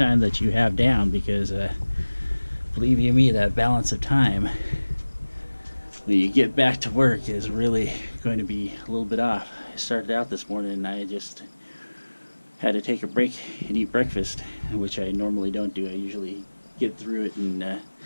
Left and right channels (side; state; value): both; inverted; correlation -1.00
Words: that you have down, because believe you me, that balance of time when you get back to work is really going to be a little bit off. I started out this morning and I just had to take a break and eat breakfast, which I normally don't do. I usually get through it, and